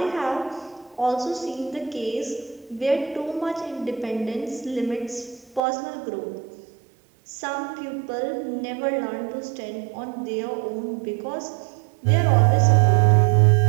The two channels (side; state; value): left; drops out; at 5.6 s